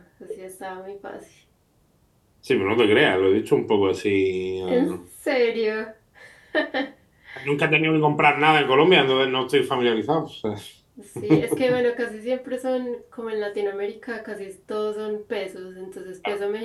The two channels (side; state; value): both; identical; correlation 1.00